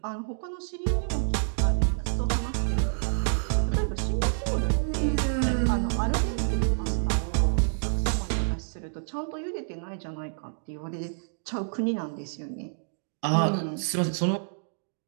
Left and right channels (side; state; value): left; silent; digital silence